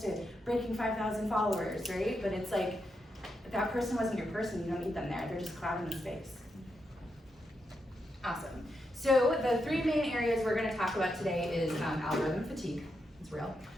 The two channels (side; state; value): both; normal; correlation 0.84